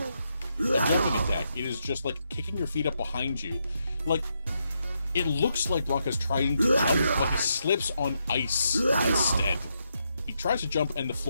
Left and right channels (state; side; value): inverted; both; correlation -0.81